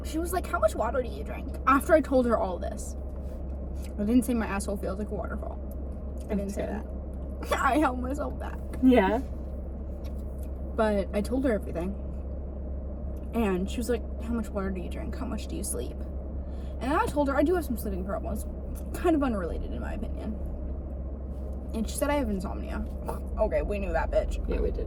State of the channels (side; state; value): both; identical; correlation 1.00